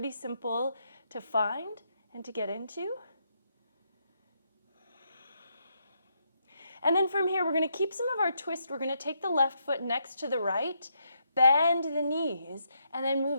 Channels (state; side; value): inverted; both; correlation -0.78